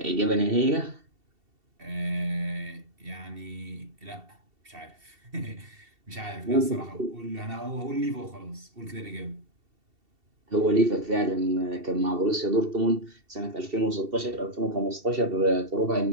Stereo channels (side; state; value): left; late; 2.7 ms